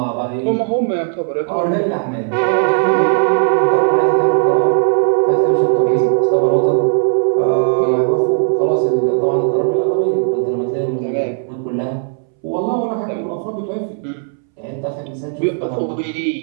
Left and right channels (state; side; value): silent; left; 67 dB below the other